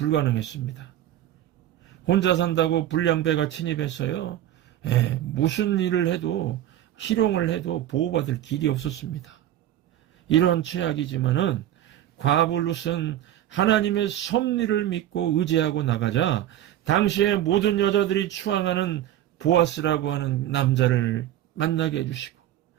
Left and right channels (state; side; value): quieter; left; 12.4 dB